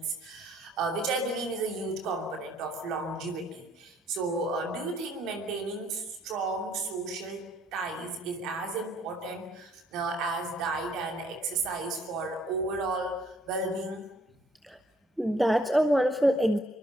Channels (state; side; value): normal; both; correlation 0.63